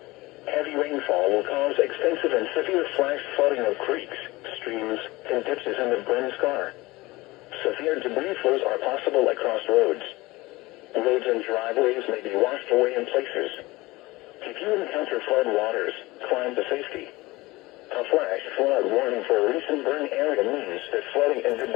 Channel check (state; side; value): quieter; right; 20.9 dB